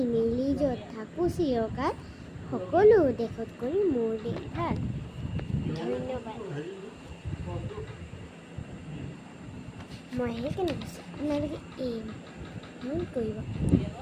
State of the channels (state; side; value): identical; both; correlation 1.00